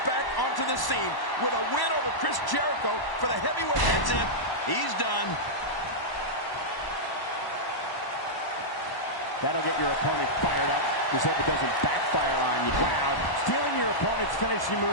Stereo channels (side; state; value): right; late; 1.0 ms